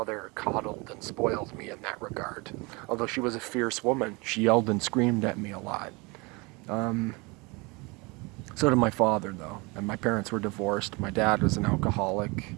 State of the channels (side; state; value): left; quieter; 27.1 dB